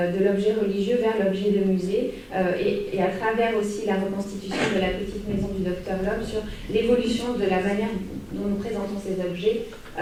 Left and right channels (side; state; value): both; identical; correlation 1.00